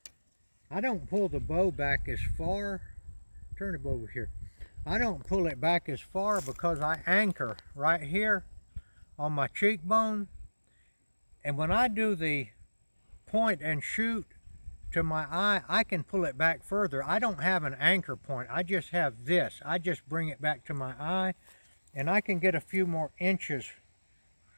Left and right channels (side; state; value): both; inverted; correlation -1.00